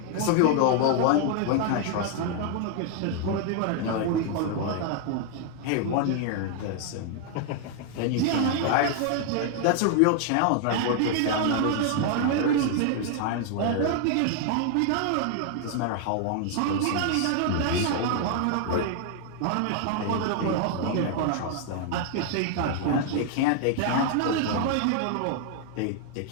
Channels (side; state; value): both; different; correlation 0.00